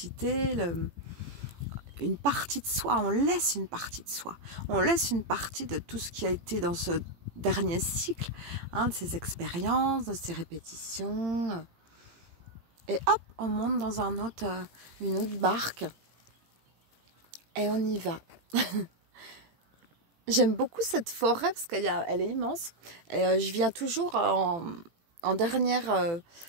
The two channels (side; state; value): left; late; 18 ms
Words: une partie de soi. On laisse une partie de soi. On laisse une partie de tout ce qui a été dans ce dernier cycle, hein, de ces expériences, de ces répétitions. Et hop, on monte dans une autre barque. Et on y va. J'aime beaucoup cette forêt parce qu'elle est immense. Et, je viens toujours en dernière...